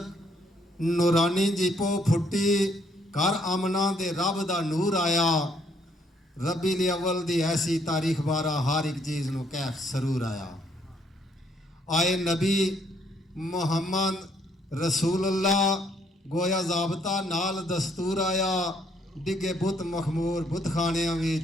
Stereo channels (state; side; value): normal; both; correlation 0.68